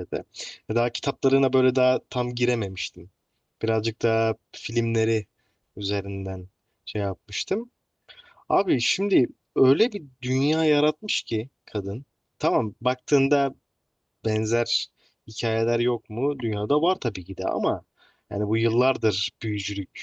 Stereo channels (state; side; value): identical; both; correlation 1.00